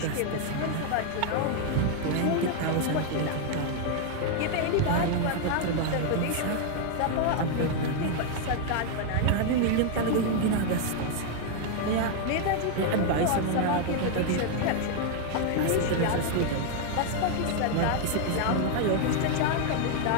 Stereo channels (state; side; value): different; both; correlation 0.00